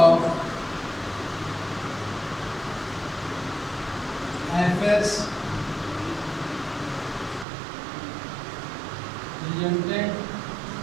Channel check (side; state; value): left; drops out; at 7.5 s